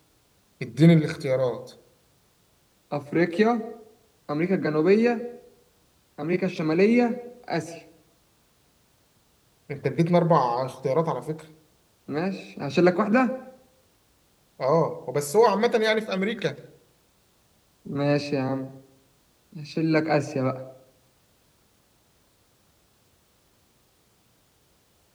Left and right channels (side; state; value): both; identical; correlation 1.00